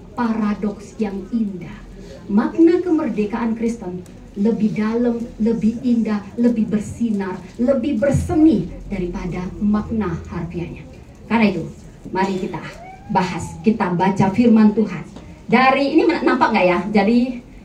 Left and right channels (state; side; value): identical; both; correlation 1.00